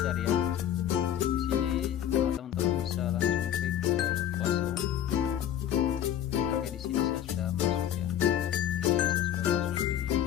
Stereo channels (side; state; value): right; quieter; 10.4 dB